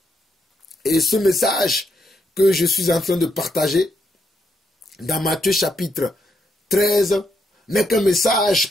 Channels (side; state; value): both; normal; correlation 0.78